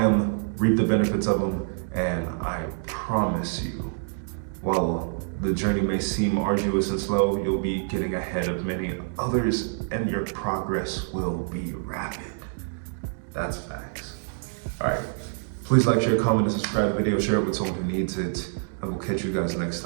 them, reap the benefits of them, and I promise you, while the journey may seem arduous and slow, you'll be getting ahead of many others and your progress will be rapid. That's facts. All right, please like, share, comment, and subscribe to the video. Share it with someone who needs it. I will catch you guys next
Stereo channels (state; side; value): silent; left; 60 dB below the other